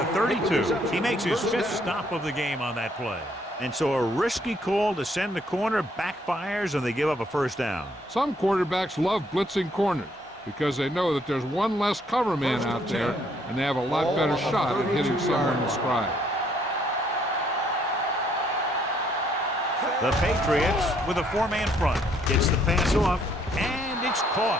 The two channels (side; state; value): both; normal; correlation 0.68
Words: 32. He makes his 5th stop of the game on that play. And so a risky call to send the corner backfires and they give up a first down. Some quarterbacks love blitzing corners because they know that there's one less cover man out there and they have a lot better shot at hitting someone in stride. The Patriots with a 4-man front. Gets the pass off, and it's caught.